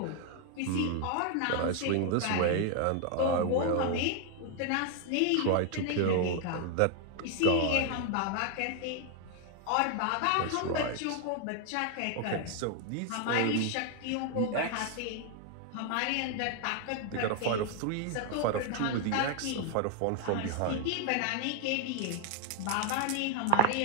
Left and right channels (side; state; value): both; different; correlation 0.00